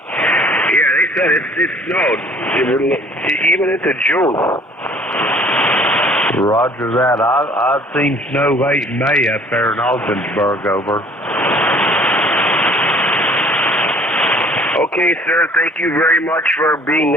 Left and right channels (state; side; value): normal; both; correlation 0.55